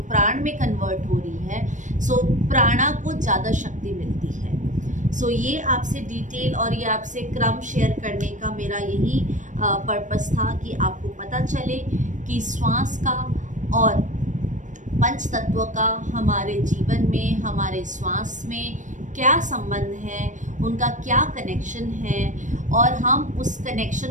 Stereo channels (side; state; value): left; late; 0.36 ms